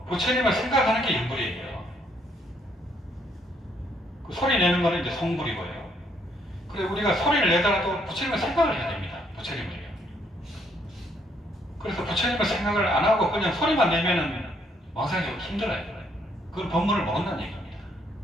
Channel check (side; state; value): both; normal; correlation 0.70